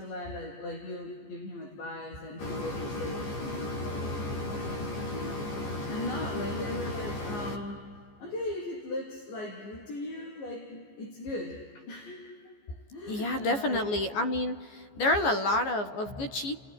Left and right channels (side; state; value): right; late; 14 ms